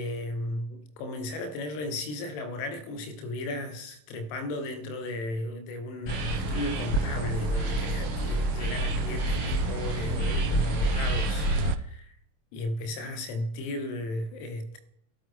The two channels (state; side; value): late; right; 27 ms